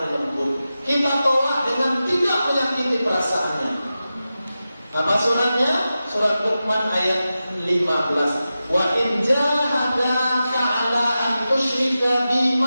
lembut. Kita tolak dengan tidak menyakiti perasaannya. Apa suratnya? Surat Luqman ayat 15. Wa in jahadaka 'ala an tusyrika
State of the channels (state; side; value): inverted; both; correlation -0.93